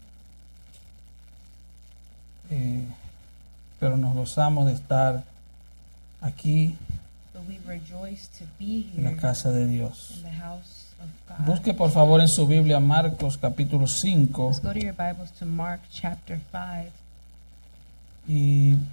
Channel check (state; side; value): inverted; both; correlation -1.00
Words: Pero nos gozamos de estar aquí but we rejoice to be en la here casa de Dios. in the house of God. Busque por favor en su Biblia Marcos capítulo 5 Let's go to your Bibles to Mark chapter 5. y